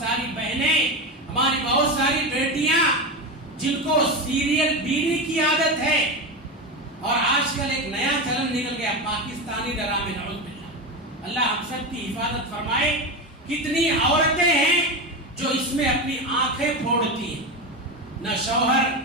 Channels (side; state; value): both; normal; correlation 0.18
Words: بہنیں، ہماری بہت ساری بیٹیاں جن کو سیریل بینی کی عادت ہے، اور آج کل ایک نیا چلن نکل گیا پاکستانی ڈرامے، نعوذ باللہ. اللہ ہم سب کی حفاظت فرمائے. کتنی عورتیں ہیں جو اس میں اپنی آنکھیں پھوڑتی ہیں. نہ شوہر